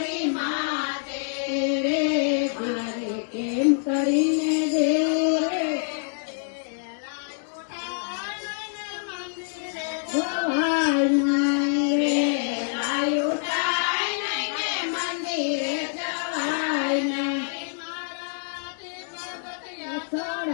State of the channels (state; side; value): silent; right; digital silence